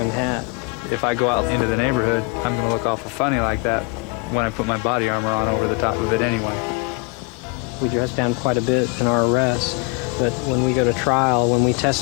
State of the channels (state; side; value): quieter; right; 27.1 dB